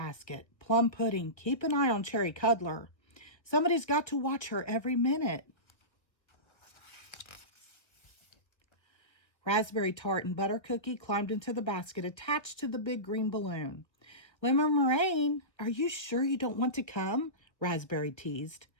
Plum Pudding, keep an eye on Cherry Cuddler. Somebody's got to watch her every minute. Raspberry Tart and Butter Cookie climbed into the basket attached to the big green balloon. "Lemon Meringue, are you sure you don't want to come?" Raspberry teased.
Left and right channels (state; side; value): late; right; 1.2 ms